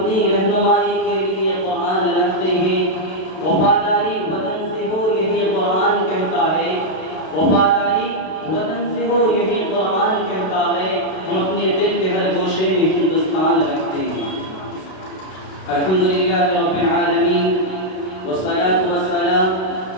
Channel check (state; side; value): late; right; 32 ms